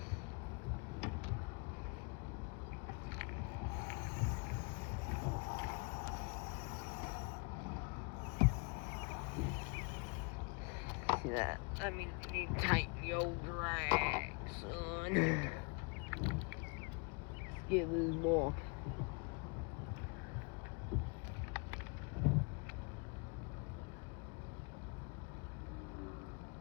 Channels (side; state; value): right; quieter; 33.7 dB